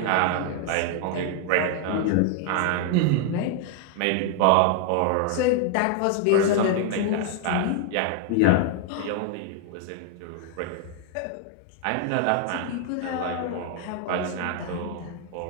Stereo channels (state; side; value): different; both; correlation 0.00